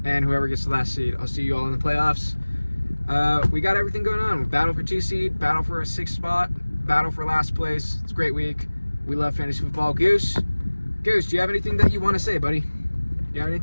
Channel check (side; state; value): both; inverted; correlation -1.00